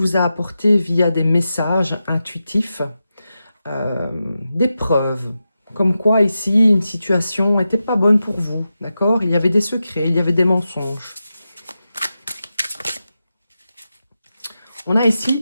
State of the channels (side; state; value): both; inverted; correlation -0.90